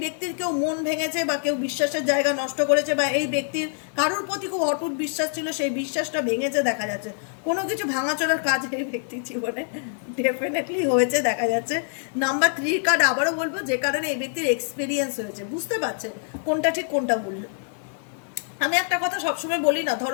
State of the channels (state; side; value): silent; right; 56 dB below the other